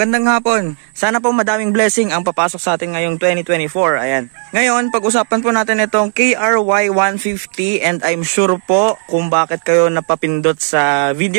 hapon. Sana po madaming blessing ang papasok sa atin ngayong 2024. Ayan. Ngayon, pag-usapan po natin itong KRY 150 and I'm sure po kung bakit kayo napapindot sa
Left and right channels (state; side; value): silent; left; 56 dB below the other